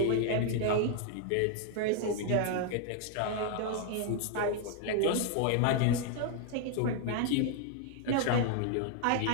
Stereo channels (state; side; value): different; both; correlation 0.00